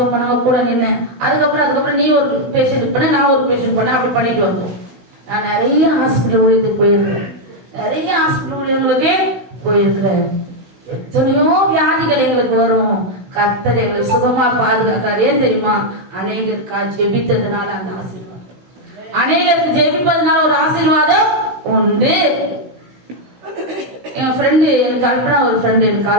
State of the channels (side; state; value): left; late; 15 ms